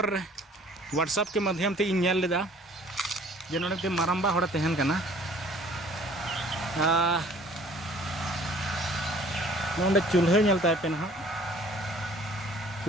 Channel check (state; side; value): normal; both; correlation 0.53